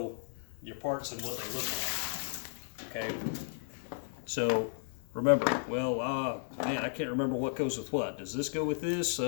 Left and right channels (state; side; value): silent; right; digital silence